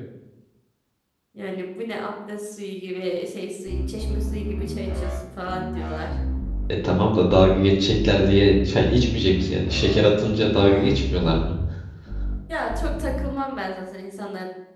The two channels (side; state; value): both; identical; correlation 1.00